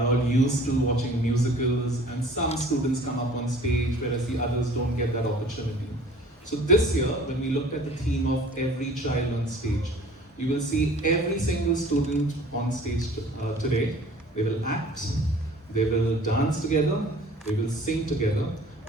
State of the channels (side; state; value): both; normal; correlation 0.49